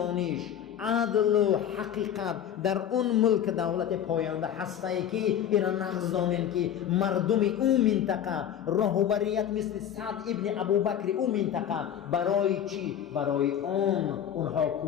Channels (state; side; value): quieter; right; 9.7 dB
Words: عدل و حقیقت در اون ملک دولت پاینده هسته که اینا نقض دانن که مردم اون منطقه راهبریت مثل سعد ابن ابوبکر اون منطقه برای چی؟ برای اونها